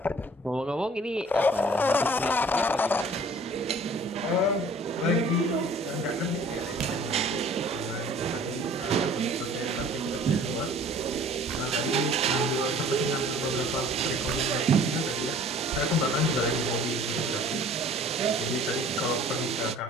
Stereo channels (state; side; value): normal; both; correlation 0.50